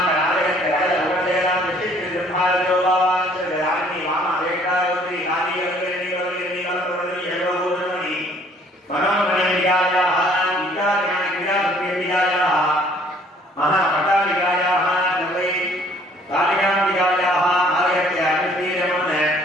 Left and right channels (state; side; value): normal; both; correlation 0.59